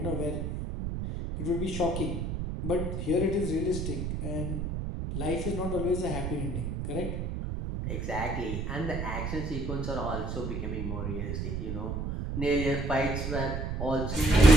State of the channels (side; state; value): right; noise; rumble, 3 dB below the sound